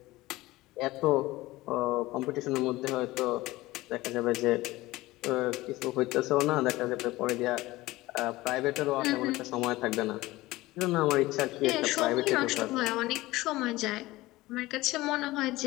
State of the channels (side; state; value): right; quieter; 18.8 dB